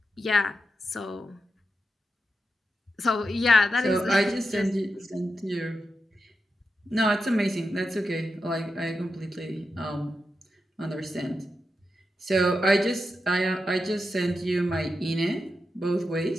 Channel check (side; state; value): both; normal; correlation 0.88